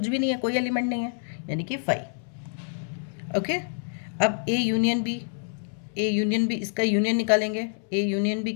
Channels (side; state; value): right; silent; 60 dB below the other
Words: भी नहीं है, कोई एलिमेंट नहीं है, यानी कि 5। ओके, अब A union B, A union B, इसका यूनियन निकालेंगे। ए यूनियन बी